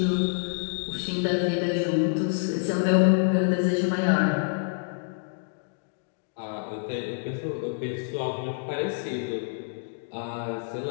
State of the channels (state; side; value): silent; right; digital silence